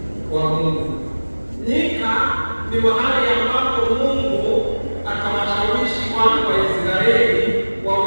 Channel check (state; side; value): inverted; both; correlation -1.00